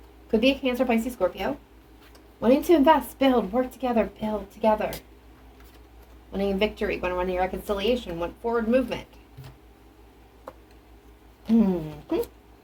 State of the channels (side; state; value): both; identical; correlation 1.00